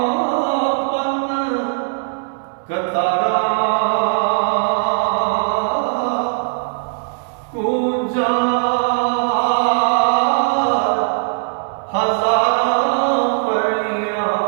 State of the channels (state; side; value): silent; left; 65 dB below the other